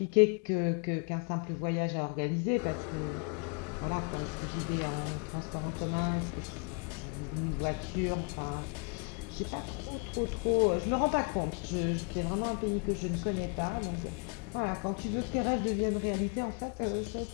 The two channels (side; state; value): right; quieter; 36.6 dB